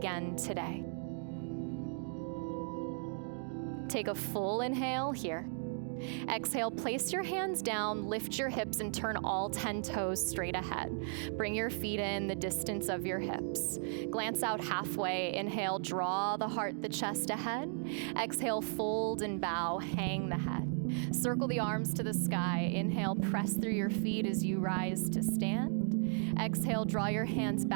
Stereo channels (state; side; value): silent; left; 54 dB below the other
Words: today. Take a full inhale here. Exhale, place your hands down, lift your hips, and turn all 10 toes straight ahead. Bring your feet in the distance of your hips. Glance out halfway. Inhale, draw the heart, the chest ahead. Exhale, fold and bow, hang the head. Circle the arms to the sky. Inhale, press through your feet as you rise to stand. Exhale, draw your hands